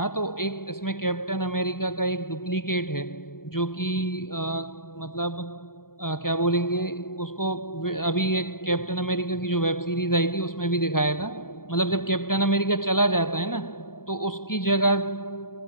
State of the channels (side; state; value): right; late; 0.92 ms